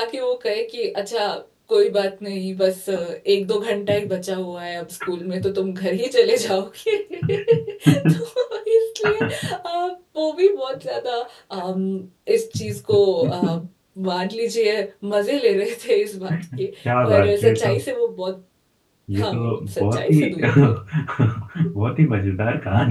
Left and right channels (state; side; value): identical; both; correlation 1.00